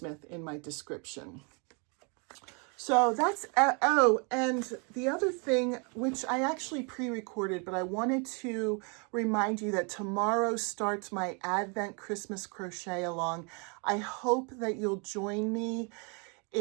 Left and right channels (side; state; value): left; quieter; 34.8 dB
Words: in my description. So that's, oh, and the other thing, which I actually pre-recorded, but I wanted to remind you that tomorrow starts my Advent Christmas crochet along. I hope that you'll join me.